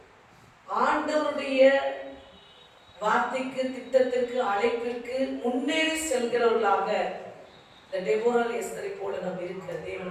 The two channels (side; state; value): both; identical; correlation 1.00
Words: ஆண்டவருடைய வார்த்தைக்கு, திட்டத்திற்கு, அழைப்பிற்கு முன்னேறி செல்கிறவர்களாக இந்த டெபோராள் எஸ்தரை போல நாம் இருக்க